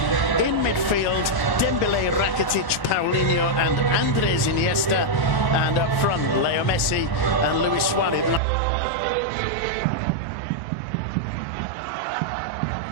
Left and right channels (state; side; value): drops out; left; at 8.4 s